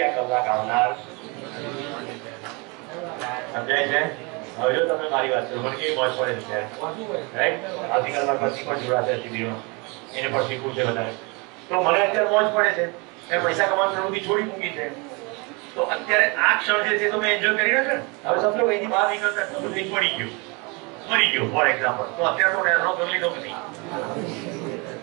આ કલાક આવનાર. સમજાય છે? હવે જો તમે મારી વાત કરો મને કેવી મોજ પડે છે રાઈટ. આવતીકાલમાં પછી પણ જોડાશે શિબિરમાં, એને પણ શીખવું છે વધારે. તો મને અત્યારે મોજ પડે છે, મેં પૈસા કમાવાની પ્રવૃત્તિ છોડી મૂકી છે. તો અત્યારે આ ક્ષણ જે છે તો મેં એન્જોય કરી રહ્યો છું. હવે સમજો કે એની બહાર નીકળતા બધું પડી ગયું, મરી ગયો ફોર એક્ઝામ્પલ, તો અત્યારે તો એનો કરી લીધો કે નહીં?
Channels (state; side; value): quieter; left; 29.3 dB